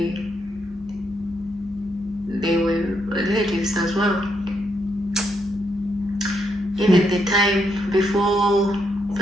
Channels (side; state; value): both; normal; correlation 0.78